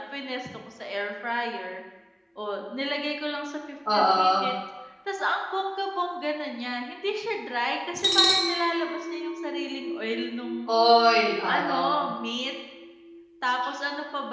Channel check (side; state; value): both; identical; correlation 1.00